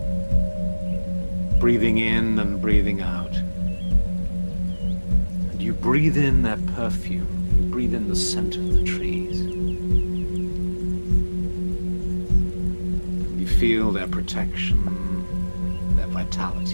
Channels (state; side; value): inverted; both; correlation -1.00